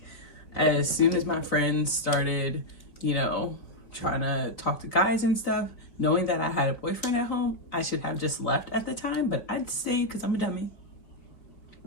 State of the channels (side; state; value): right; late; 4.2 ms